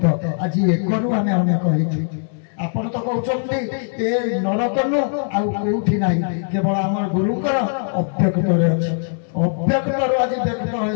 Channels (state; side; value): silent; right; digital silence